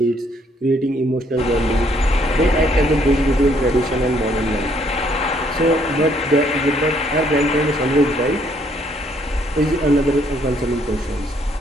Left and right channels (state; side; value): normal; both; correlation 0.67